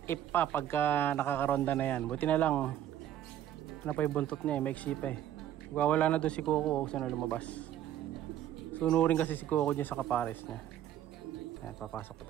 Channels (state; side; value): quieter; left; 11.4 dB